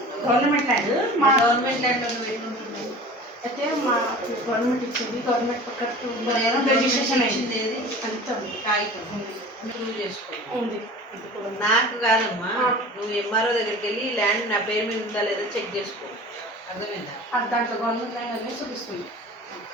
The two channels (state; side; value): normal; both; correlation 0.39